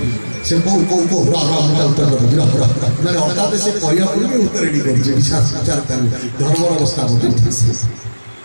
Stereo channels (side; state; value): both; inverted; correlation -1.00